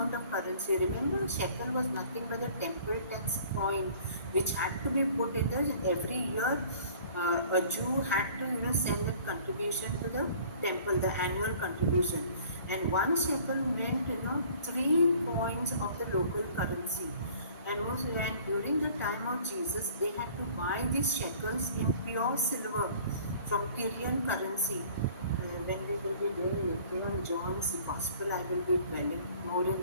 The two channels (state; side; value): inverted; both; correlation -0.51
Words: of currency. Remember, shekel was nothing but a temple tax coin which had to be put in there every year. A Jew had to, send that contribution to the temple, the annual contribution. And one shekel meant, 3 coins of the local currency. And during the time of Jesus, they had to buy these shekels in pure silver from Tyrian currency. When we will be doing later on John's Gospel, I will be dwelling more in